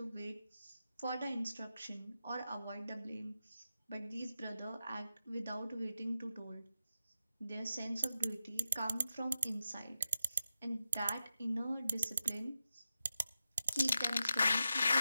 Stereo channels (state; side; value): inverted; both; correlation -0.90